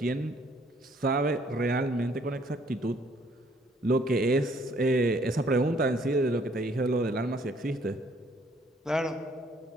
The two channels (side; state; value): both; normal; correlation 0.63